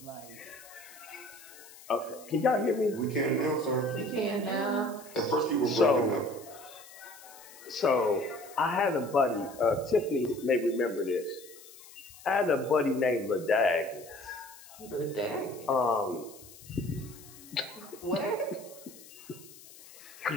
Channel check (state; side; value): noise; left; hiss, 19 dB below the sound